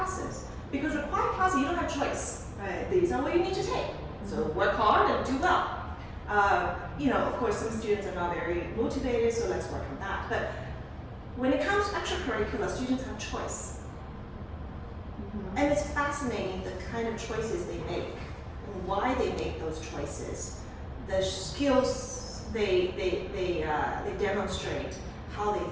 Because required classes, you don't have choice. Right. These are what you need to take. So work hard and do well. Of course, some students are not very motivated, so let's work on that. But when it comes to extracurricular, students have choice. And it's fascinating the kind of choices they make and why they make those choices. The skills they demonstrate, how they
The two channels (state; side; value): identical; both; correlation 1.00